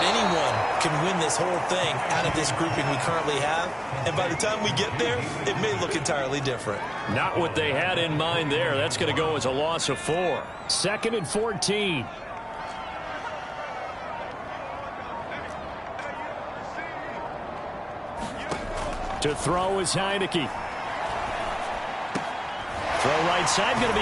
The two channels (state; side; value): identical; both; correlation 1.00